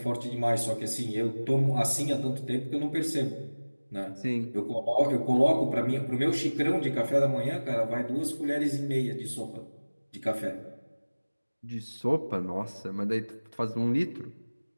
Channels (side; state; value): both; inverted; correlation -1.00